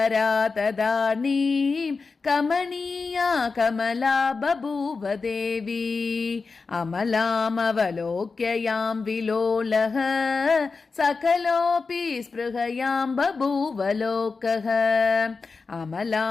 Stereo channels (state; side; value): quieter; right; 4.4 dB